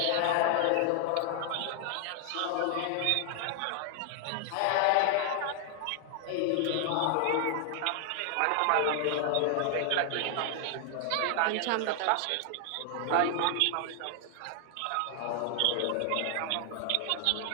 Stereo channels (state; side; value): different; both; correlation 0.00